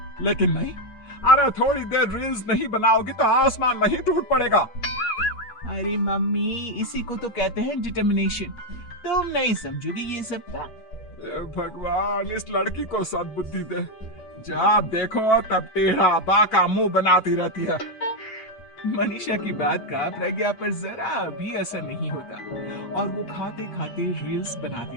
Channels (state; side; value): late; right; 8.5 ms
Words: लेकिन नहीं, अरे थोड़ी देर रील्स नहीं बनाओगे तो आसमान नहीं टूट पड़ेगा। अरे मम्मी, इसी को तो कहते हैं डिटर्मिनेशन। तुम नहीं समझोगी ये सब का। भगवान, इस लड़की को सद्बुद्धि दे। जब देखो तब टेढ़ा बाका मुंह बनाती रहती है। मनीषा की बात का प्रज्ञा पर जरा भी असर नहीं होता और वो खाते खाते रील्स